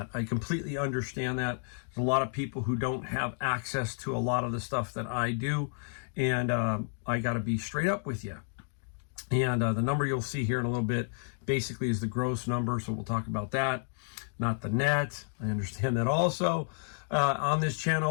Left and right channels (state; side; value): silent; right; digital silence